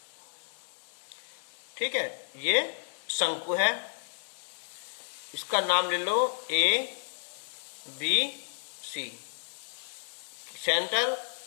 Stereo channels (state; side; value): silent; right; 56 dB below the other